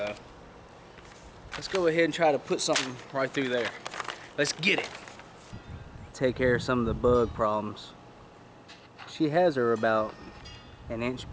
let's go ahead and try to put something right through there. Let's get it. Take care of some of the bug problems. She has her about an inch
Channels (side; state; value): both; identical; correlation 1.00